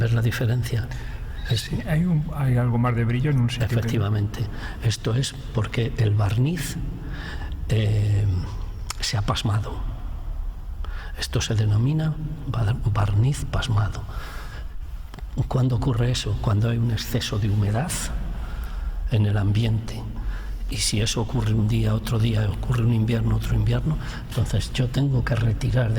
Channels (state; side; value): identical; both; correlation 1.00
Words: la diferencia? Sí, hay algo más de brillo en un sitio. Efectivamente. Esto es porque el barniz se ha pasmado. Esto se denomina barniz pasmado. ¿Cuándo ocurre eso? Cuando hay un exceso de humedad en el ambiente. Y si eso ocurre un día, otro día, ocurre un invierno, otro invierno, entonces yo tengo que retirar